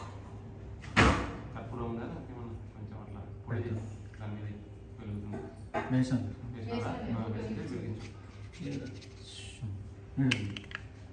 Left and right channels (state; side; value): identical; both; correlation 1.00